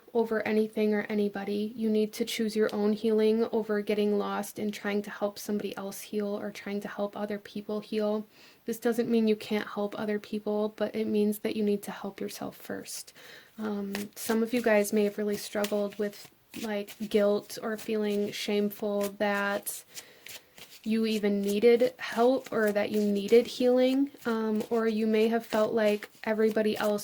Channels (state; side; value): identical; both; correlation 1.00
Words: over anything or anybody. You need to choose your own healing over getting lost in trying to help somebody else heal or trying to help other people heal. This doesn't mean you can't help other people, but it means that you need to help yourself first. Some of you guys may have really struggled with like guilt or feeling shameful that you even needed help or that you needed healing, or you may have felt like everybody